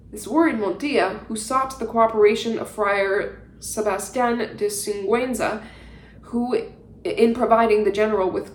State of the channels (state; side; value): identical; both; correlation 1.00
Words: This worried Montilla, who sought the cooperation of Friar Sebastian de Singüenza, in providing the general with